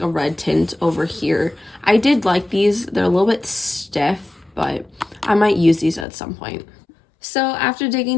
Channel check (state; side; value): drops out; right; at 6.1 s